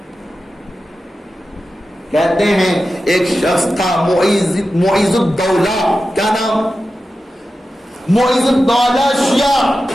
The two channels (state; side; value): normal; both; correlation 0.92